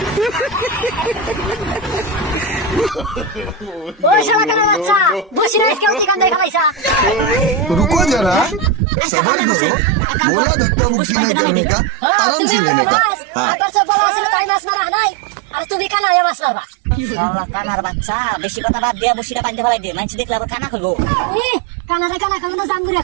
ওই শালা কানা বাচ্চা বসি না আজকে ওই কান্দায় ফেলাইছা रुको जरा सबर करो बोला धक्का मुक्की नहीं करने का आराम से लेने का हाँ আবার সব বড় আছে তাই মাছ মারা নাই আর তুমি কানা এ মাছ মারবা শালা কানার বাচ্চা বেশি কথা বাদ দিয়া বসিটা পাইতে ফেলাই দে মানুষ দেখলে আবার কানা করবো কানারে কানা কইব না জাম্বুরিয়া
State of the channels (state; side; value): drops out; left; at 8.8 s